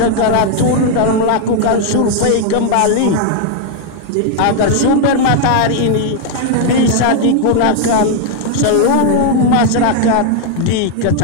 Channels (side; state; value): both; different; correlation 0.00